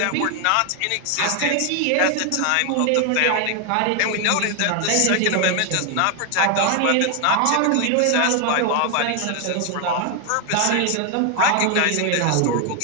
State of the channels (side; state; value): both; different; correlation 0.01